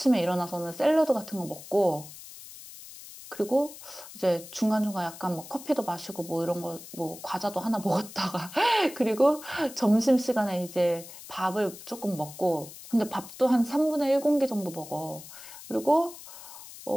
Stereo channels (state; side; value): noise; left; hiss, 15 dB below the sound